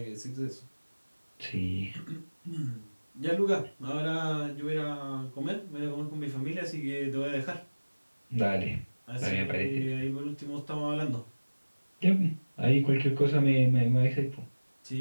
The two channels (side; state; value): both; inverted; correlation -1.00